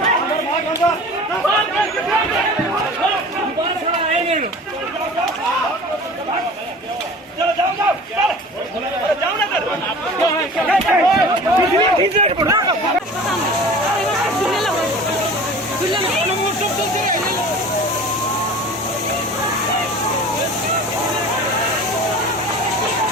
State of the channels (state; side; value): normal; both; correlation 0.40